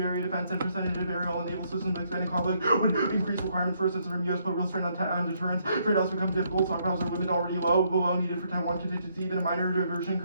area defense, and percentage of aerial and naval systems expanding conflict would increase requirements for assistance from U.S. put real strain on deterrence. Trade-offs become difficult. Stockpiles are limited already below needed for Taiwan contingency. Even a minor diversion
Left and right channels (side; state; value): both; inverted; correlation -0.72